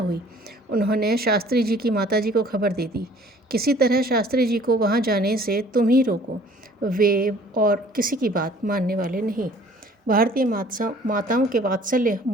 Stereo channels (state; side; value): normal; both; correlation 0.54